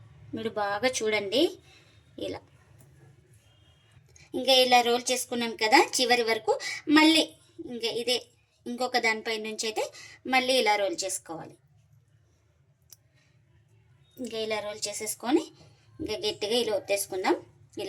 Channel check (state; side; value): identical; both; correlation 1.00